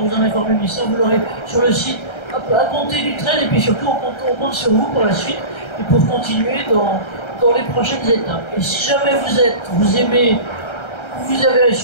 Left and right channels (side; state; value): right; late; 1.3 ms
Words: vous en informer. Mais ça, vous l'aurez sur le site à compter du 13. Et puis surtout, on compte sur vous pour la suite et pour continuer dans les prochaines étapes. Et si jamais vous aimez, vous avez à